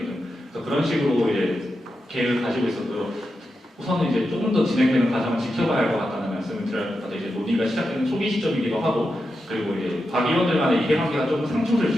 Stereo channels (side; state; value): both; normal; correlation 0.88